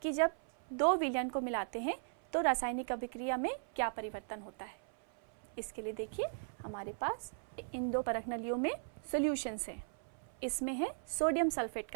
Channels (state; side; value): silent; left; 52 dB below the other